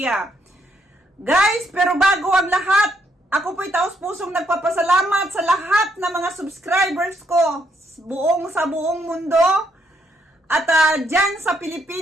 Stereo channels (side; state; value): both; normal; correlation 0.74